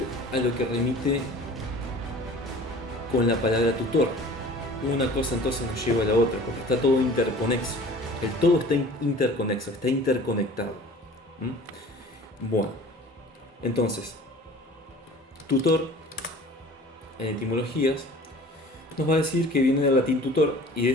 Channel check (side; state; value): both; normal; correlation 0.44